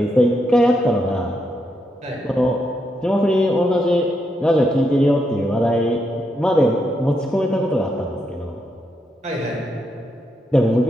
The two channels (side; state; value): both; normal; correlation 0.81